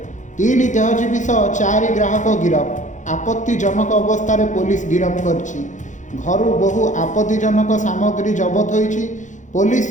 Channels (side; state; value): right; late; 0.36 ms